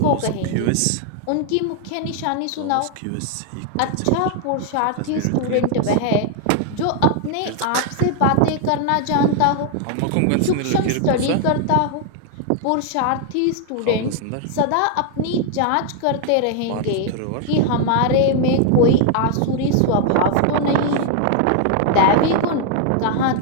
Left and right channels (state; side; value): different; both; correlation 0.00